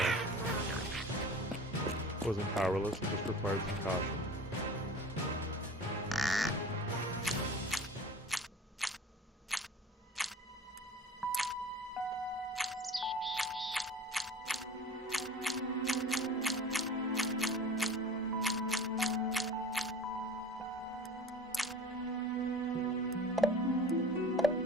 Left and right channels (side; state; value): both; normal; correlation 0.40